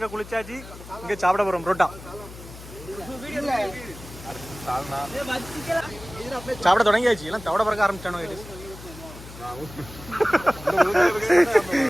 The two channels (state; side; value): noise; left; hum, 16 dB below the sound